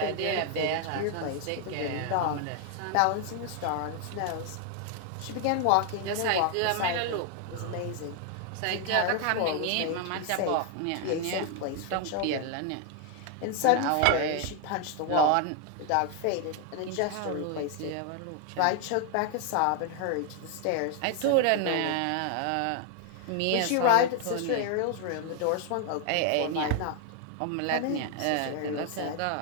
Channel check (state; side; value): different; both; correlation 0.00